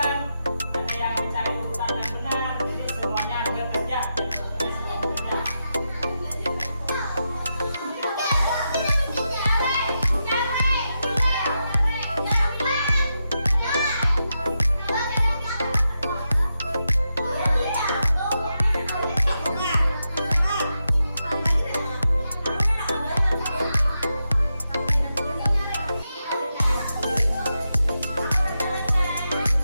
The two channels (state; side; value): inverted; both; correlation -0.87